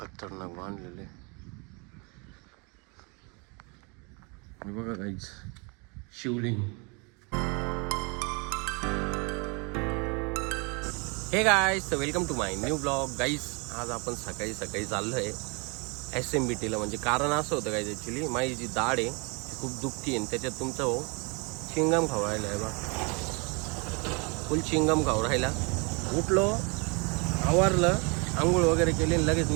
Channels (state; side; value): quieter; left; 31.5 dB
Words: बांधलेले. बघा गाईज, शिवलिंग. हे गाईज, तर welcome to my new blog. Guys आज आपण सकाळी चाललोय SMBTला. म्हणजे कारण असं होतं गाईज, ॲक्च्युली माझी जी दाढ आहे ती खूप दुखती आहे. त्याच्यात तुमचा हो चिंगम खाऊ राहिला आहे बा, फुल चिंगम खाऊ राहिला. उठलो, आवरलं, आंघोळ वगैरे केली आणि लगेच